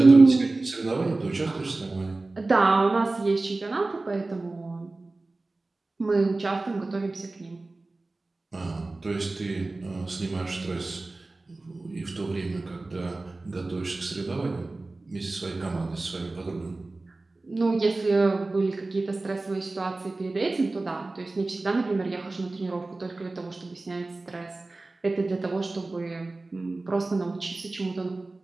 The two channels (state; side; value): quieter; left; 3.2 dB